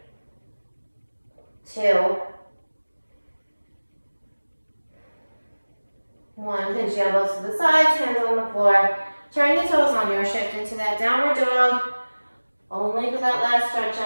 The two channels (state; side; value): inverted; both; correlation -1.00